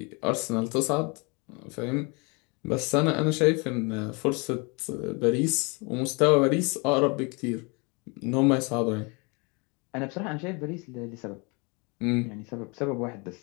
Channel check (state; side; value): quieter; right; 30.4 dB